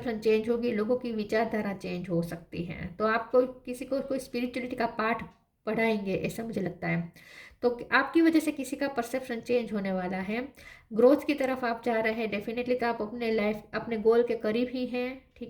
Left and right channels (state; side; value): identical; both; correlation 1.00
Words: चेंज होगी, लोगों की विचारधारा चेंज हो सकती है। तो आपको किसी को कोई स्पिरिचुअलिटी का पाठ पढ़ाएंगे, ऐसा मुझे लगता है। तो आपकी वजह से किसी का परसेप्शन चेंज होने वाला है। ग्रोथ की तरफ आप जा रहे हैं डेफिनेटली, तो आप अपने लाइफ अपने गोल के करीब ही हैं।